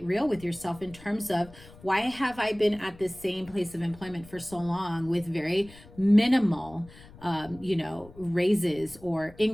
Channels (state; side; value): noise; left; rumble, 21 dB below the sound